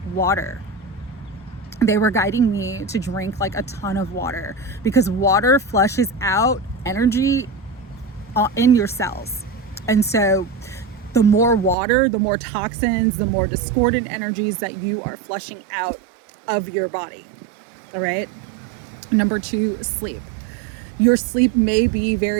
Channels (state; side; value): drops out; left; at 11.8 s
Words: water. They were guiding me to drink like a ton of water, because water flushes out energy in your cells. And so the more water, the more toxins, the more discordant energies that you are flushing out of your body. All right. Number two, sleep. Your sleep may be